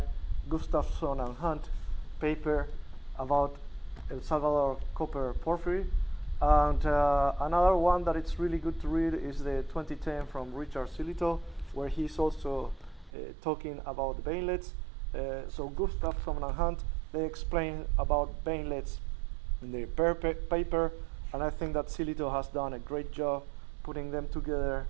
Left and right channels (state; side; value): drops out; left; at 13.1 s